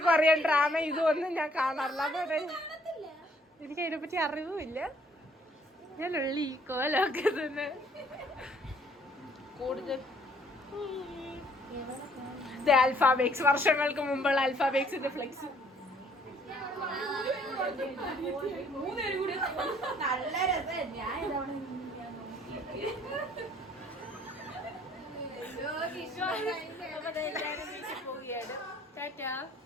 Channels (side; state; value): both; normal; correlation 0.62